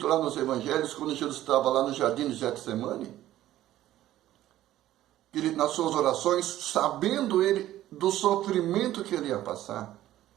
lá nos evangelhos, quando Jesus estava lá no jardim de Getsemane? Ele, nas suas orações, sabendo ele do sofrimento que ele ia passar,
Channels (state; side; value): quieter; left; 13.8 dB